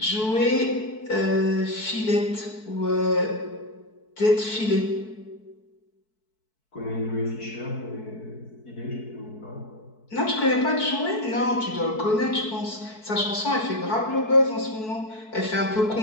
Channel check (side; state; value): right; late; 4.6 ms